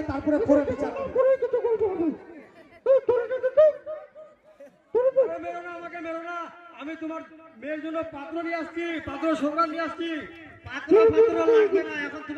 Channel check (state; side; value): identical; both; correlation 1.00